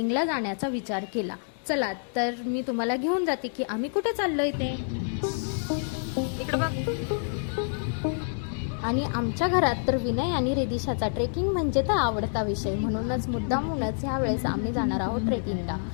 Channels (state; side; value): silent; right; digital silence